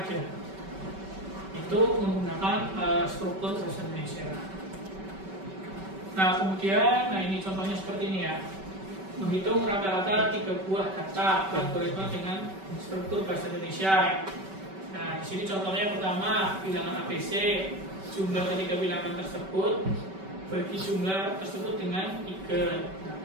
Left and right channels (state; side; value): late; left; 5.2 ms